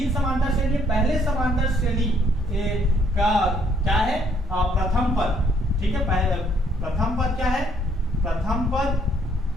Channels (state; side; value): normal; both; correlation 0.67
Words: समांतर श्रेणी, पहले समांतर श्रेणी का क्या है, प्रथम पद, ठीक है। पहले प्रथम पद क्या है, प्रथम पद